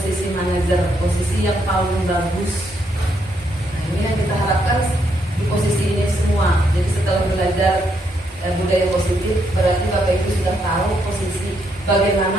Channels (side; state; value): both; normal; correlation 0.76